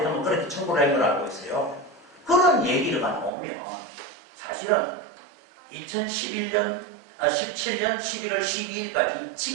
그렇게 청구를 한 걸 알고 있어요. 그런 얘기가 나오면 사실은 2017년 11월 12일까지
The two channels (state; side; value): drops out; left; at 3.3 s